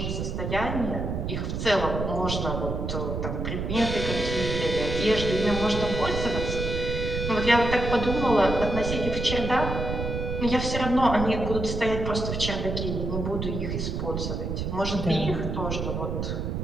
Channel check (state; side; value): noise; right; rumble, 3 dB below the sound